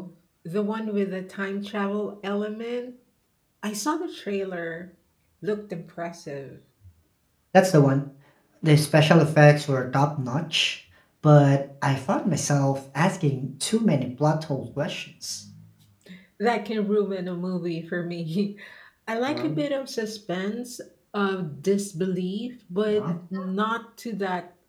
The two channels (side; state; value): both; identical; correlation 1.00